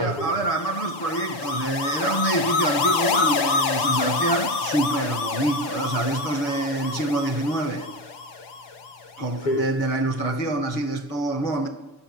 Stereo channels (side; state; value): right; late; 6.9 ms